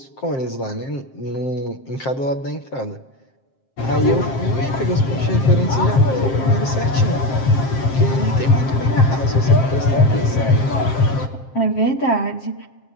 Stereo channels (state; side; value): late; right; 7.6 ms